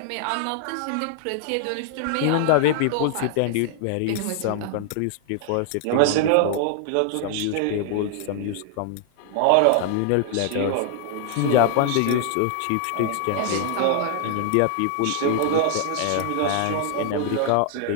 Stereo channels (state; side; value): different; both; correlation 0.00